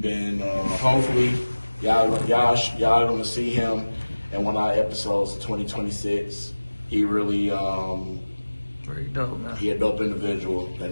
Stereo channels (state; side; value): inverted; both; correlation -1.00